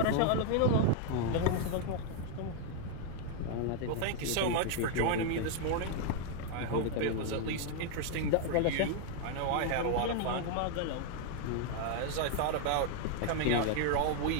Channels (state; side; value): different; both; correlation 0.00